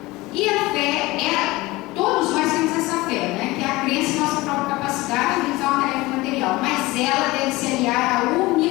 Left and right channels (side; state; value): right; quieter; 20.5 dB